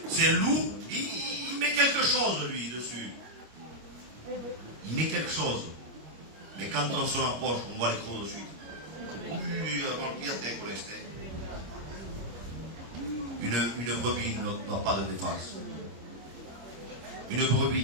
C'est un loup, il met quelque chose lui dessus. Il met quelque chose. Mais quand on se rapproche, on voit les crocs dessus. Une brebis n'a pas de défense. Une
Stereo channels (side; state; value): left; late; 25 ms